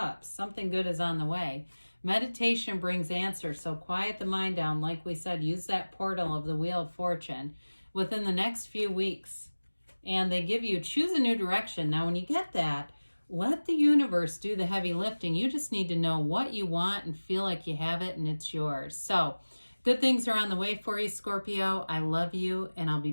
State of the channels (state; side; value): inverted; both; correlation -1.00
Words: something good is on the way. Meditation brings answers. So quiet the mind down. Like we said, use that portal of the Wheel of Fortune within the next few weeks. And they give you, choose a new direction. Now, when you get that, let the universe do the heavy lifting. You just need to know what you want and feel like you have it and it's yours. So good things are on the way for you, Scorpio. I love you, and I'll be